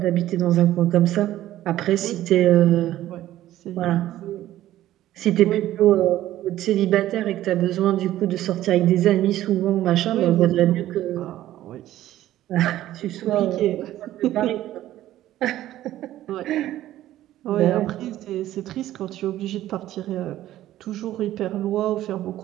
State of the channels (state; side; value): quieter; left; 13.8 dB